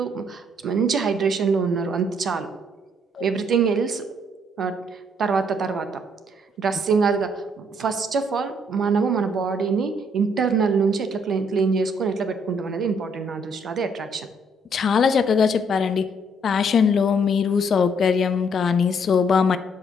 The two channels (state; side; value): normal; both; correlation 0.67